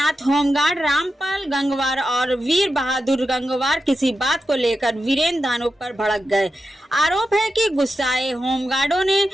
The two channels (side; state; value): both; normal; correlation 0.89